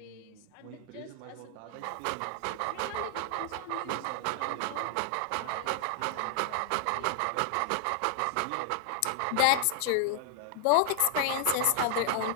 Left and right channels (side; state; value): both; different; correlation 0.00